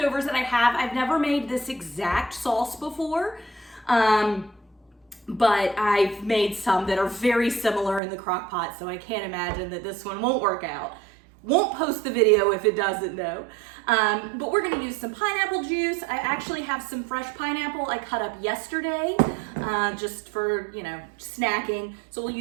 that I have. I've never made this exact sauce before, but I've made some that are very similar in the crock pot, so I can't imagine that this one won't work out. Won't post the video if it doesn't though. But we're gonna use some pineapple juice. I actually have some fresh pineapple I cut up yesterday, just for, you know, snacking. So we'll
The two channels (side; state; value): left; drops out; at 8.0 s